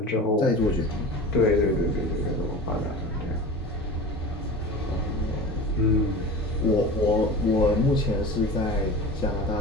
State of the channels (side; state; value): both; normal; correlation 0.33